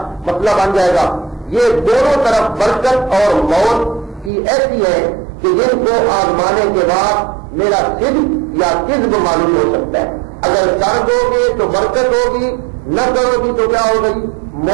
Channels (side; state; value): left; drops out; at 4.3 s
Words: مسئلہ بن جائے گا۔ یہ دونوں طرف برکت اور موت کی ایسی ہے کہ جن کو آزمانے کے بعد میرا صدق یا کذب معلوم ہو سکتا ہے۔ اگر کر دو گے تو برکت ہوگی، نہ کرو گی تو کیا ہوگی؟